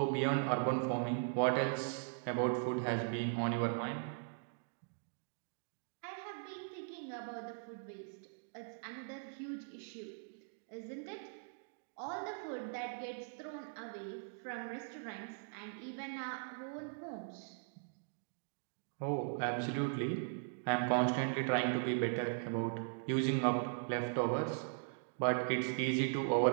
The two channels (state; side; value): silent; left; digital silence